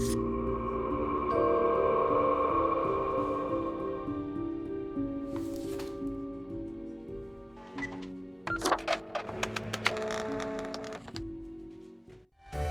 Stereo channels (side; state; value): both; identical; correlation 1.00